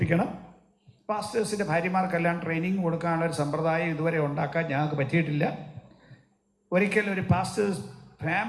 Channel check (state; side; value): identical; both; correlation 1.00